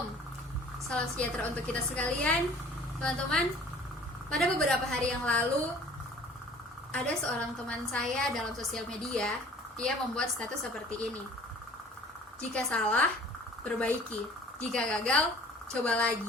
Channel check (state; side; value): normal; both; correlation 0.50